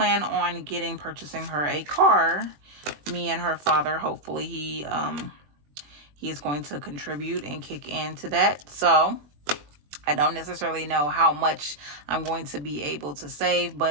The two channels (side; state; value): left; late; 20 ms